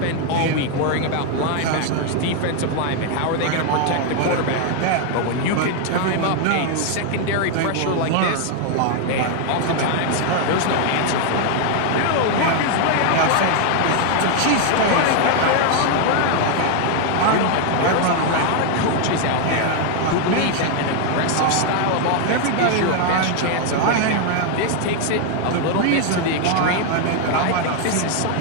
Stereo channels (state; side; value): different; both; correlation 0.01